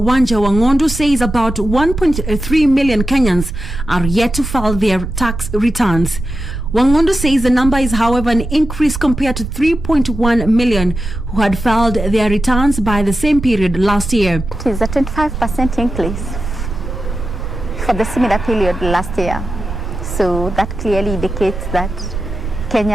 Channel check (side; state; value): right; noise; rumble, 7 dB below the sound